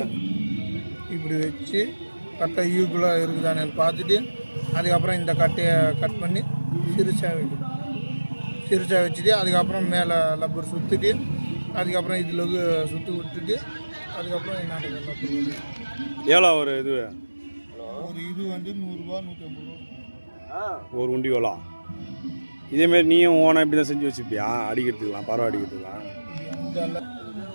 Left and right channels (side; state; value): both; inverted; correlation -1.00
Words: இப்படி வச்சு கட்டை ஈக்குவலாக இருக்குதானு பார்த்துட்டு அதுக்கப்புறம் இந்த கட்டையை கட் பண்ணி சிறுசாக வைக்கணும். சிறுசாக வச்சுட்டு அதுக்கப்புறம் மேலே லப்பர் சுற்றிட்டு அதுக்கப்புறம் இதில் சுற்றி விட்டுட்டு அதுக்கப்புறம் என்ன லப்பர் எவ்வளோ ஒரு இது? ஒரு இது வந்து 100 ரூபா 150 ரூபா ஒரு உண்டி எவ்வளோ? இதேமாரி நீயும் ஓனா இப்படி தான் செஞ்சு வச்சுப்பியா? அடிக்கிறதுக்கலாம், பறவை அடிக்கிறதுக்கலாம்.